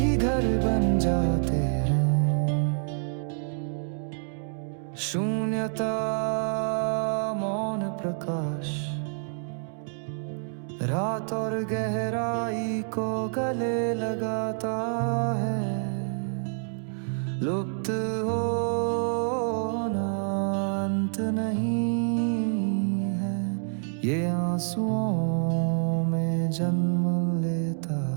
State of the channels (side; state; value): left; silent; digital silence